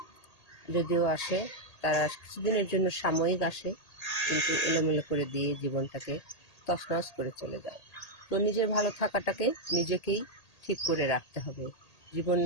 যদিও আসে, তারা কিছুদিনের জন্য সাময়িক আসে, কিন্তু এলোমেলো করে দিয়ে জীবনটাকে তছনছ করে চলে যায়। তো নিজের ভালো থাকাটাকে নিজেকেই ঠিক করে রাখতে হবে।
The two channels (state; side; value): late; right; 1.8 ms